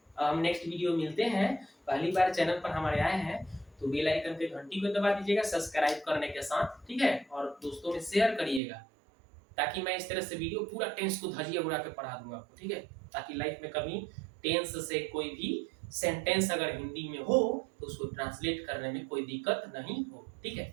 हम नेक्स्ट वीडियो मिलते हैं। पहली बार चैनल पर हमारे आए हैं तो बेल आइकन पे घंटी को दबा दीजिएगा सब्सक्राइब करने के साथ, ठीक है। और दोस्तों में शेयर करिएगा, ताकि मैं इस तरह से वीडियो पूरा टेंस को धजिया उड़ा के पढ़ा दूंगा आपको, ठीक है। ताकि लाइफ में कभी टेंस से कोई भी सेंटेंस अगर हिंदी में हो तो उसको ट्रांसलेट करने में कोई दिक्कत नहीं हो, ठीक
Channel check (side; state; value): left; drops out; at 8.6 s